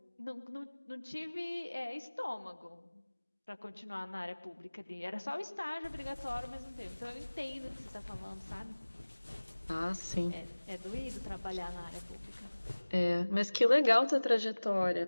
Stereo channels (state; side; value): inverted; both; correlation -1.00